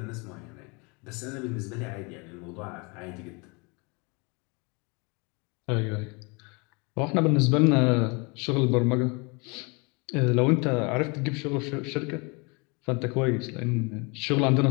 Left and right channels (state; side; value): quieter; right; 30.1 dB